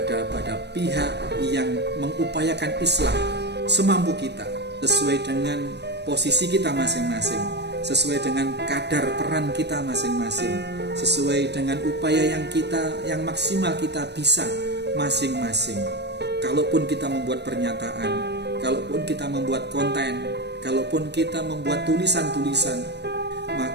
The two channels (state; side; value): late; left; 0.49 ms